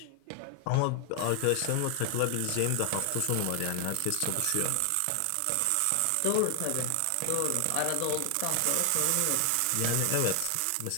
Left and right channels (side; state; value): both; different; correlation 0.00